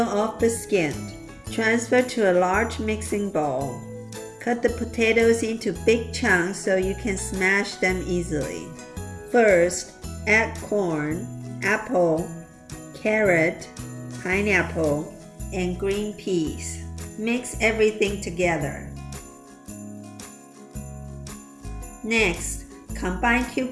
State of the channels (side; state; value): both; identical; correlation 1.00